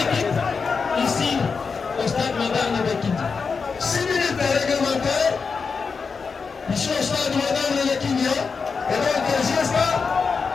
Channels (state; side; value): quieter; right; 5.1 dB